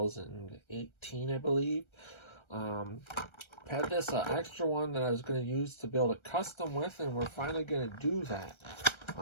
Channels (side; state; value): right; late; 1.3 ms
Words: I believe. Had this extra one that I was going to use to build a custom with, and we're finally going to do that.